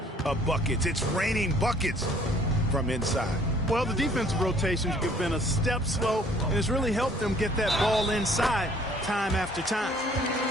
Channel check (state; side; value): normal; both; correlation 0.58